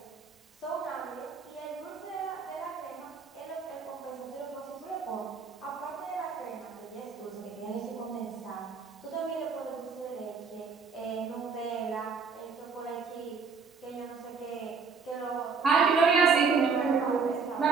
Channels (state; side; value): quieter; left; 5.3 dB